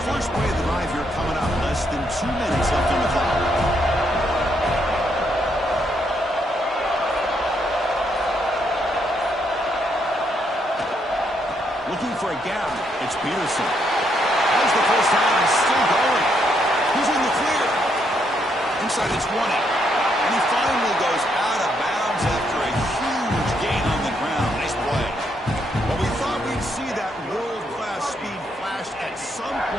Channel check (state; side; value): normal; both; correlation 0.75